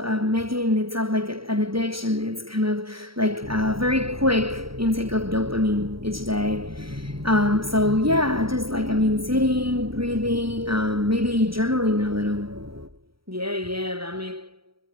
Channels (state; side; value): late; left; 0.75 ms